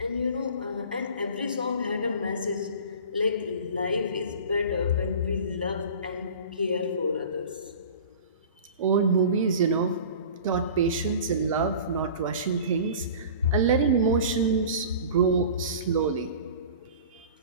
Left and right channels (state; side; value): inverted; both; correlation -0.39